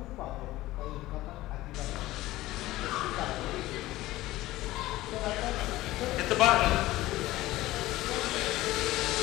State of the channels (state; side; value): quieter; right; 17.1 dB